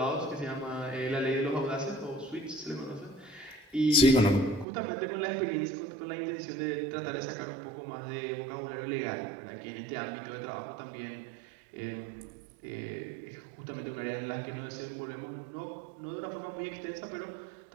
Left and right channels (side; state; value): left; drops out; at 4.7 s